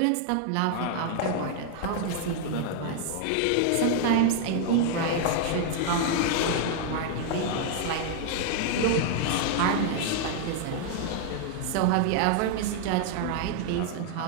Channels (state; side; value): different; both; correlation 0.00